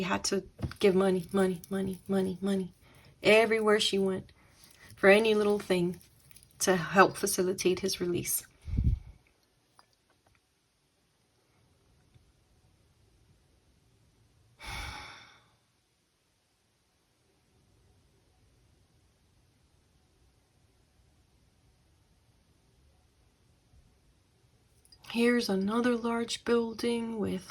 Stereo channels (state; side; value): identical; both; correlation 1.00